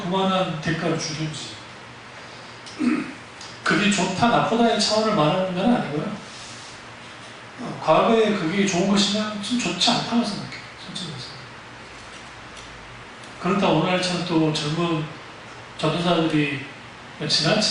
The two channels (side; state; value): both; identical; correlation 1.00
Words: 그만한 대가를 주든지. 그게 좋다 나쁘다의 차원을 말하는 건 아니고요. 과거에 그게 좋은 것이면 좀 좋지 않다고 생각해요. 솔직히 말해서. 그렇다 오늘날처럼 또 젊은 전도사들이